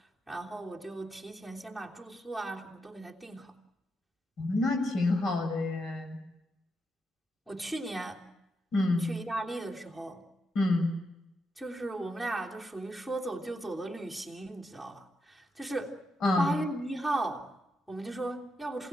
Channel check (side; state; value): both; normal; correlation 0.83